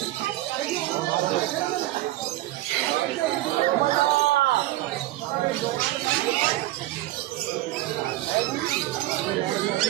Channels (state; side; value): quieter; left; 16.2 dB